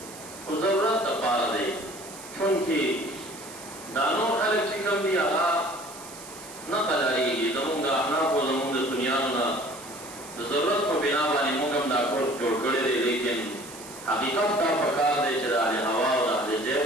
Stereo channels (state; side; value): noise; right; hiss, 15 dB below the sound